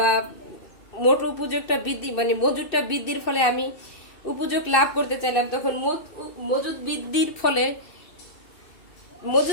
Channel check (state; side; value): late; right; 2.6 ms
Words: মোট উপযোগটা বৃদ্ধি মজুদটা বৃদ্ধির ফলে আমি উপযোগ লাভ করতে চাইলাম, তখন মজুদ